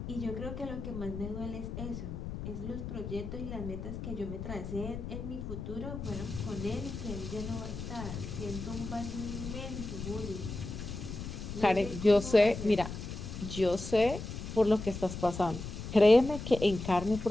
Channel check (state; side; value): noise; left; rumble, 7 dB below the sound